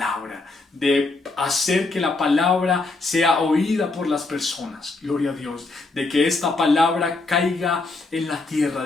de hacer que la palabra sea oída por las personas, gloria a Dios, de que esta palabra caiga en la tierra,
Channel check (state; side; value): quieter; right; 3.5 dB